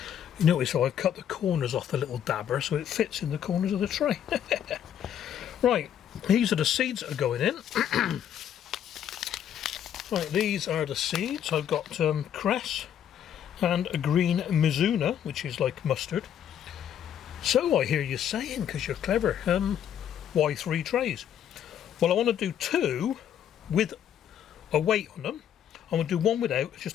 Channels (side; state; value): right; quieter; 9.7 dB